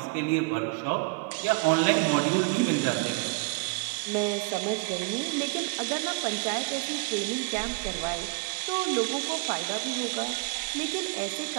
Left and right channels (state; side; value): quieter; left; 30.0 dB